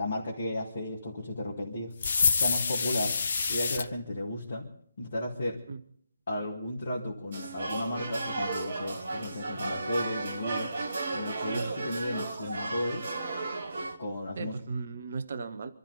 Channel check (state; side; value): inverted; both; correlation -0.82